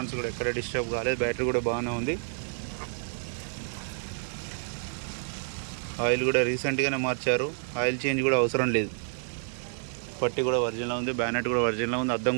కూడా ఎక్కడ డిస్టర్బ్ కాలేదు. బ్యాటరీ కూడా బాగానే ఉంది. ఆయిల్ కూడా రీసెంట్గానే మార్చారు, ఆయిల్ చేంజ్ కూడా అవసరం లేదు. పట్టి కూడా ఒరిజినల్ ఉంది, బ్యానెట్ కూడా ఒరిజినల్ ఉంది, అద్దం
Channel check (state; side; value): silent; left; digital silence